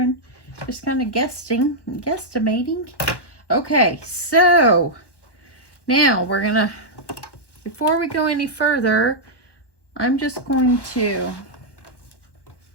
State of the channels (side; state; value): right; late; 1.1 ms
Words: just kind of guesstimating. Okay, so now we're going to, before we go any further, I'm just going to,